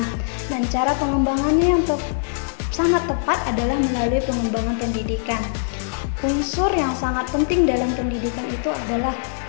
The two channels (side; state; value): right; silent; digital silence